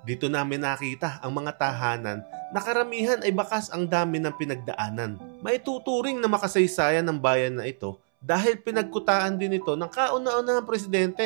Dito namin nakita ang mga tahanan na karamihan ay bakas ang dami ng pinagdaanan. Maituturing na makasaysayan ng bayan na ito dahil pinagkutaan din ito ng kauna-unahang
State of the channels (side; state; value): left; silent; 60 dB below the other